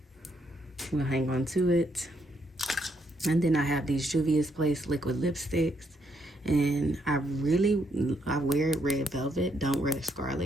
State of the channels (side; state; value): both; normal; correlation 0.75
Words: We'll hang on to it. And then I have these Juvia's Place liquid lipsticks. And I wear red velvet, don't wear